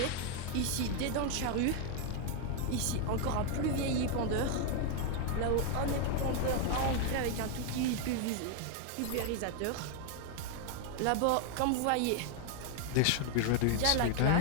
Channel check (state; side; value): different; both; correlation 0.00